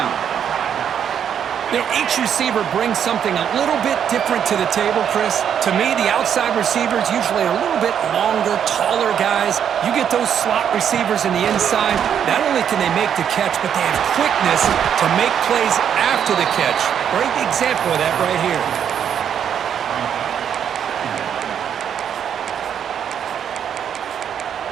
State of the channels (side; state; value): left; quieter; 8.6 dB